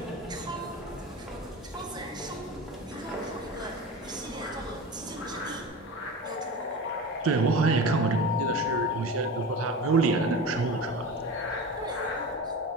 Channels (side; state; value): both; normal; correlation 0.30